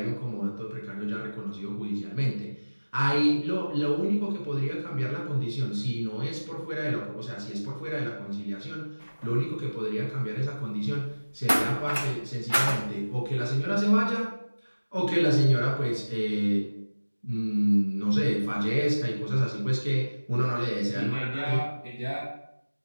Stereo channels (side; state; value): both; inverted; correlation -1.00